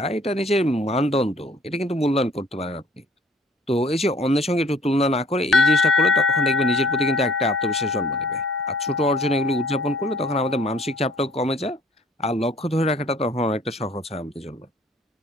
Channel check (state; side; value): normal; both; correlation 0.56